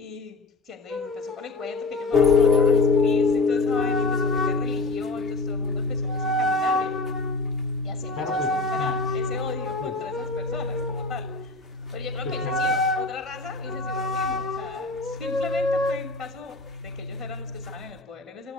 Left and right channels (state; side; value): quieter; right; 3.4 dB